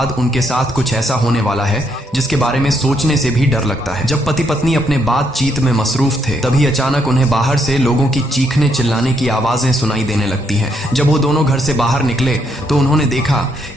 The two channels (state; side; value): normal; both; correlation 0.74